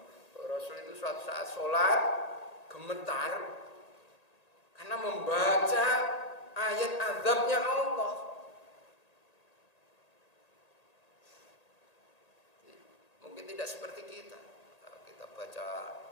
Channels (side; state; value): right; late; 1.8 ms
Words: Rasul itu suatu saat sholat gemetar karena membaca ayat azabnya Allah. Mungkin tidak seperti kita. Kita baca